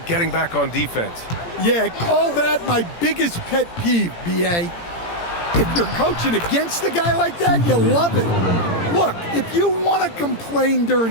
getting back on defense. Yeah, call that my biggest pet peeve, B.A. If you're coaching against a guy like that, you love it. Look, if you want to complain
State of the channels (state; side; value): late; right; 17 ms